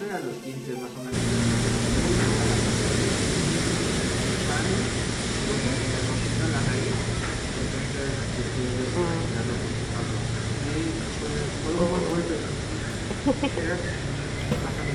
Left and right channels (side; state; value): both; identical; correlation 1.00